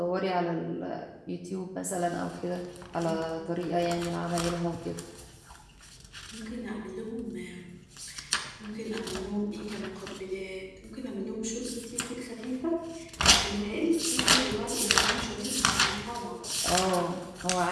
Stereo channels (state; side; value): identical; both; correlation 1.00